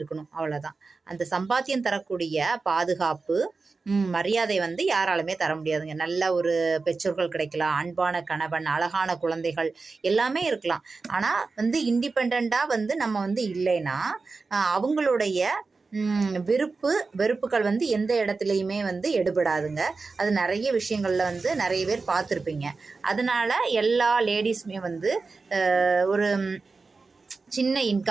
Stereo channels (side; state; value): left; quieter; 4.1 dB